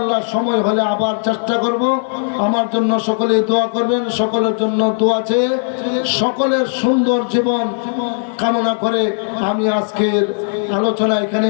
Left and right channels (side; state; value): right; silent; 57 dB below the other